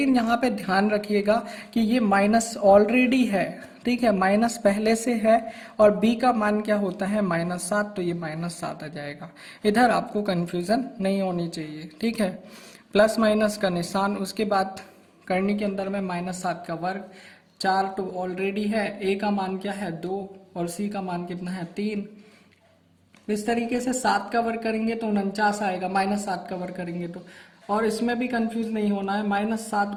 यहाँ पे ध्यान रखिएगा कि ये माइनस ऑलरेडी है, ठीक है, माइनस पहले से है और b का मान क्या होता है -7, तो ये -7 आ जाएगा। इधर आपको कंफ्यूजन नहीं होनी चाहिए, ठीक है। प्लस माइनस का निशान, उसके बाद करनी के अंदर में -7 का वर्ग, 4 तो ऑलरेडी है, a का मान क्या है 2 और c का मान कितना है 3। इस तरीके से 7 का वर्ग करेंगे तो 49 आएगा, -7 का वर्ग करेंगे तो, और इसमें भी कंफ्यूज नहीं होना है, -7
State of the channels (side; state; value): both; identical; correlation 1.00